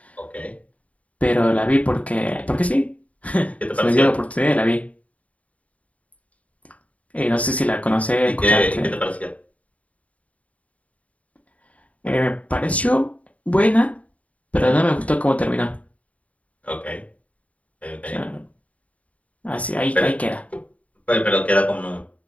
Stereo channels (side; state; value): right; late; 0.067 ms